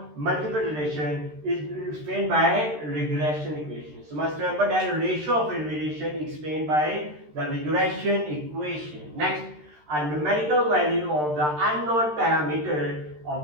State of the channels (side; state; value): left; late; 13 ms